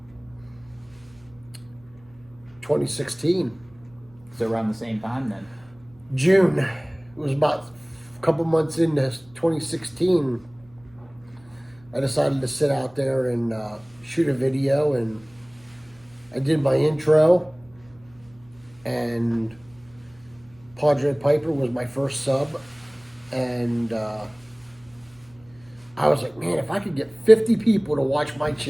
2016. So around the same time then? June. It was about a couple months into 2016. I decided to sit out there and shoot a video, and I did my intro, and Padre Piper was my first sub, and I was like, man, if I could get 50 people to watch my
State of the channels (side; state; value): right; noise; hum, 27 dB below the sound